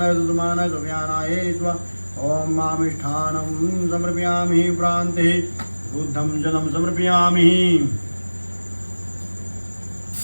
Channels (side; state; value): both; inverted; correlation -1.00